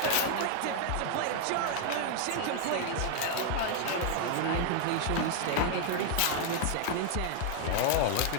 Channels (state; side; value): different; both; correlation 0.00